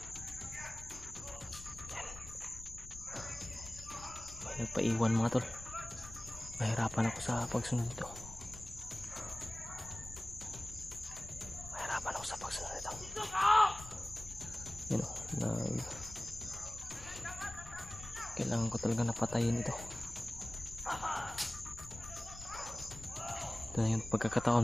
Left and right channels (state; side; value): noise; left; rumble, 15 dB below the sound